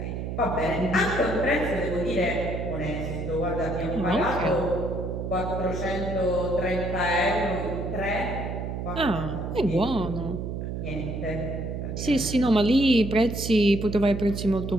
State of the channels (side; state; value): right; noise; hum, 5 dB below the sound